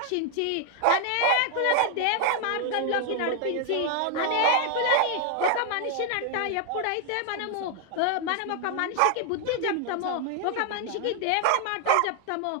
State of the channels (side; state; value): both; different; correlation 0.00